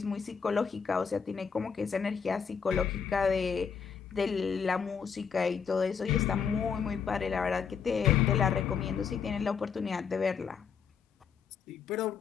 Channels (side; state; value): right; quieter; 6.5 dB